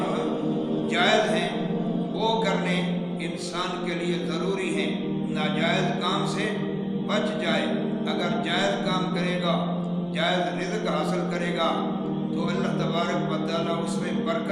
جو ہیں جائز ہیں وہ کرنے انسان کے لیے ضروری ہیں. ناجائز کام سے بچ جائے. اگر جائز کام کرے گا، جائز رزق حاصل کرے گا تو اللہ تبارک و تعالیٰ اس میں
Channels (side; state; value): both; identical; correlation 1.00